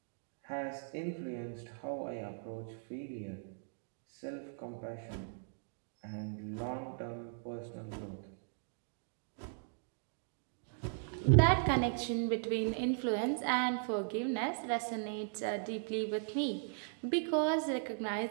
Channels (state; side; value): silent; left; digital silence